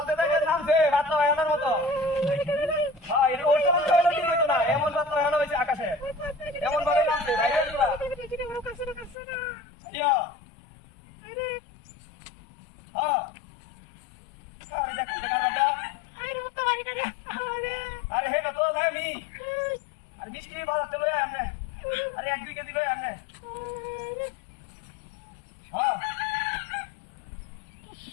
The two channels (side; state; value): right; drops out; at 9.2 s